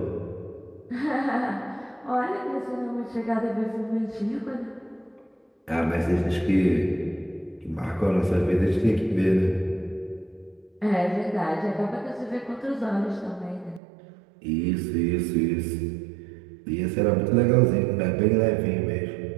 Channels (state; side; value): drops out; left; at 13.8 s